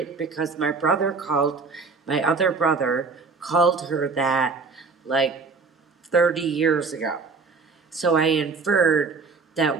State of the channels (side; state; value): left; quieter; 4.4 dB